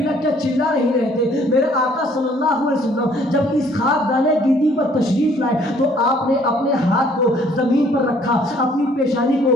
کے چلا نہیں رہے تھے۔ میرے آقا صلی اللہ علیہ وسلم جب اس خاک دانے گیتی پر تشریف لائے تو آپ نے اپنے ہاتھ کو زمین پر رکھا، اپنی پیشانی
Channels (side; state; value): both; normal; correlation 0.60